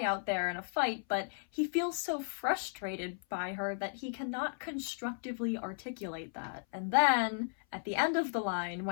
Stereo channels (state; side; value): silent; right; 54 dB below the other